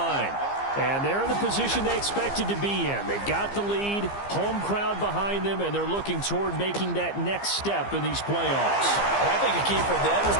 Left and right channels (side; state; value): right; late; 15 ms